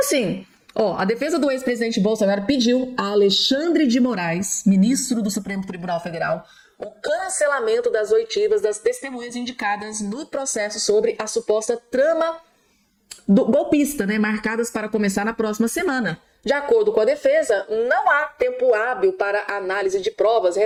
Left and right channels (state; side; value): identical; both; correlation 1.00